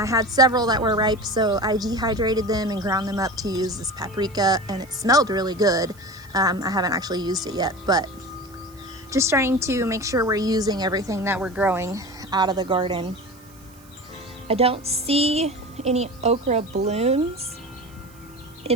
had several that were ripe, so I dehydrated them and ground them up to use this paprika, and it smelled really good. I haven't actually used it yet, but just trying to make sure we're using everything that we're growing out of the garden. I don't see any okra blooms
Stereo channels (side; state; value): right; noise; hiss, 26 dB below the sound